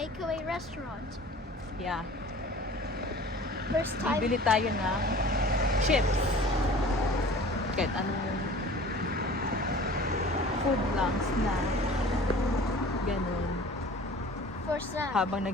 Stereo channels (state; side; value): normal; both; correlation 0.44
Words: restaurant. yeah. First time. Bibili tayo ng chips. Kahit anong food lang, snack. Ganun. For snack. Habang